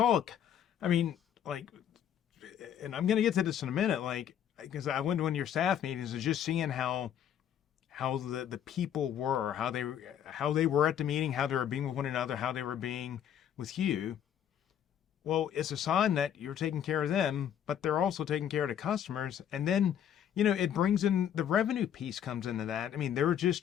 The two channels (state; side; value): quieter; right; 9.6 dB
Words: I mean, like, and I'm going to get to this in a minute, like, because I went to one of your staff meetings and just seeing how the people were, how they were at the meeting, how they were being with one another, how they were being with you. Well, it's a sign that you're taking care of them, but they're also taking care of the customers. And then, it brings in the revenue piece comes into that. I mean, there